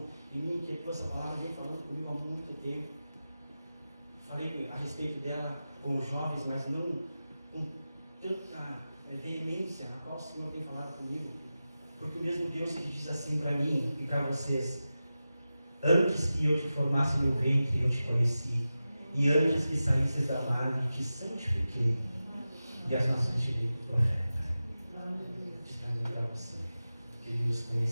e me inquietou essa palavra, vem falando comigo há muito tempo. Falei a respeito dela com os jovens, mas não com tanta veemência na qual o Senhor tem falado comigo. Porque o mesmo Deus que diz assim para mim e para vocês: antes que eu te formasse no ventre, eu te conheci. E antes que saísses da nave, te santifiquei. E as nações te dei por profeta. Diz para mim e para você que Ele nos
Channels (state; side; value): inverted; both; correlation -0.94